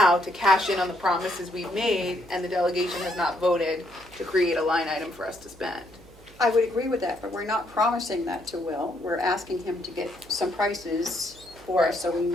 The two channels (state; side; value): noise; right; hum, 24 dB below the sound